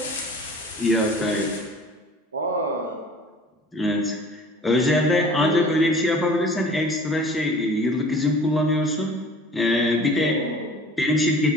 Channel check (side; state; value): both; normal; correlation 0.46